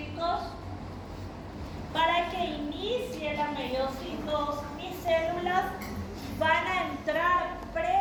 para que inicie la meiosis 2, mis células van a entrar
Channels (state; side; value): identical; both; correlation 1.00